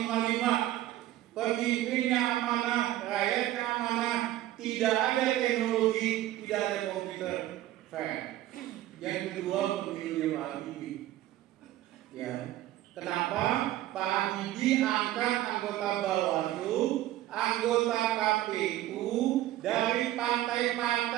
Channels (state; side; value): quieter; left; 14.4 dB